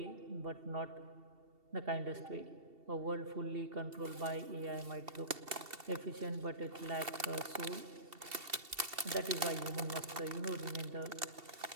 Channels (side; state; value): left; late; 2.7 ms